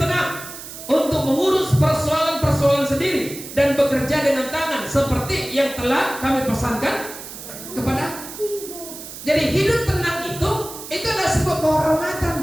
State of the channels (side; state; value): right; noise; hiss, 12 dB below the sound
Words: untuk mengurus persoalan-persoalan sendiri dan bekerja dengan tangan seperti yang telah kami pesankan kepada. Jadi hidup tenang itu adalah sebuah kehormatan.